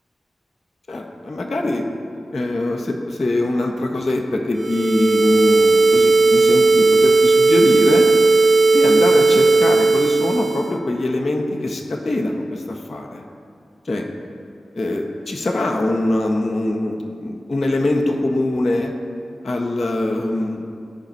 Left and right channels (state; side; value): normal; both; correlation 0.95